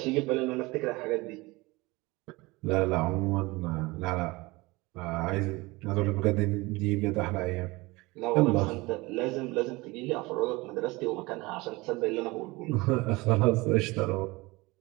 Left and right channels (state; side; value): quieter; left; 22.7 dB